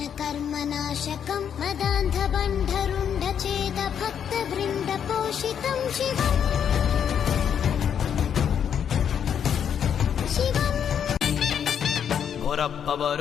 ಕರ್ಮ ನಾಶಕಂ ಮದಾಂಧ ಬಂಧರುಂಡ ಛೇದ ಭಕ್ತ ವೃಂದ ಪೋಷಿತಂ ಶಿವಂ ಬೋರಪ್ಪ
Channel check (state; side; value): quieter; right; 8.3 dB